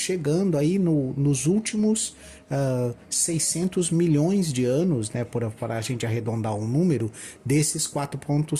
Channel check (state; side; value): identical; both; correlation 1.00